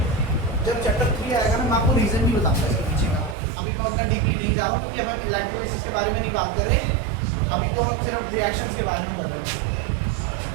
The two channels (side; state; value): left; drops out; at 3.4 s